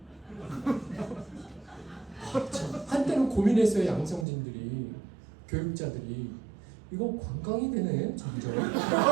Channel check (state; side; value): drops out; left; at 4.2 s